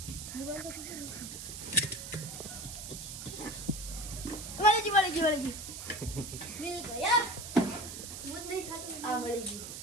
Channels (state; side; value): noise; right; hiss, 9 dB below the sound